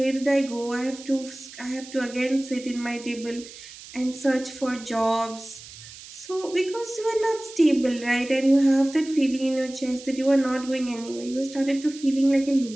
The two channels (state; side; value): noise; right; hiss, 16 dB below the sound